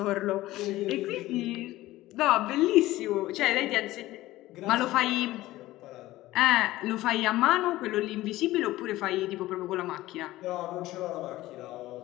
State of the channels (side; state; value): right; quieter; 16.8 dB